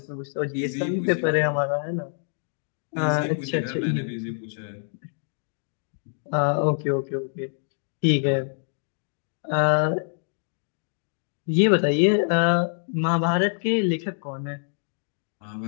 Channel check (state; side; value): silent; right; digital silence